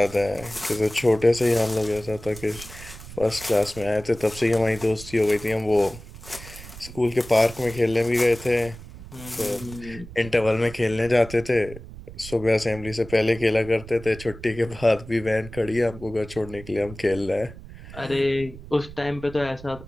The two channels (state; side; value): noise; right; rumble, 15 dB below the sound